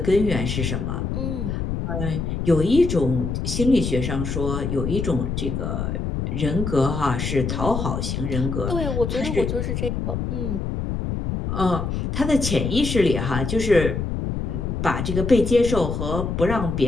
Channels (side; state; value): left; noise; rumble, 2 dB below the sound